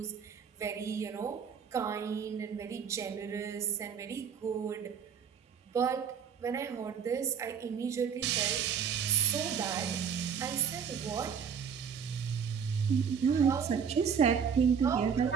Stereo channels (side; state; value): left; quieter; 7.1 dB